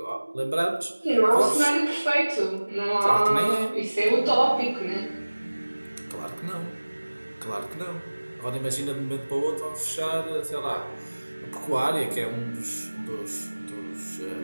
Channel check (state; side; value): inverted; both; correlation -1.00